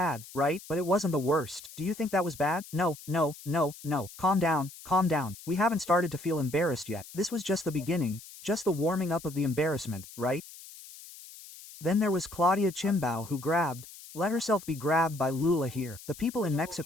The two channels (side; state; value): left; noise; hiss, 17 dB below the sound